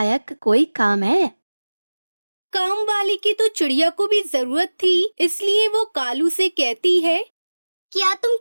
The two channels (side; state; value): both; inverted; correlation -1.00